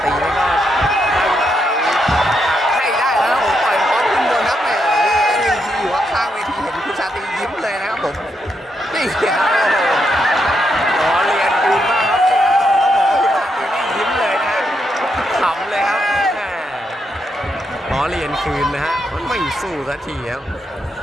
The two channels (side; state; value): both; normal; correlation 0.80